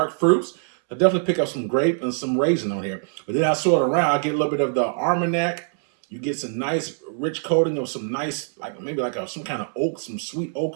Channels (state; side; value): silent; left; 63 dB below the other